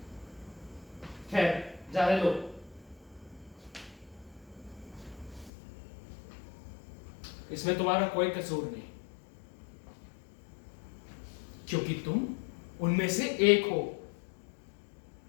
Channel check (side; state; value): right; drops out; at 5.5 s